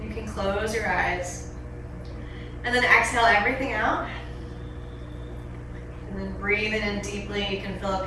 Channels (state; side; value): identical; both; correlation 1.00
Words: You can close your eyes. And then exhale everything out. And then breathing in deeply, you can fill up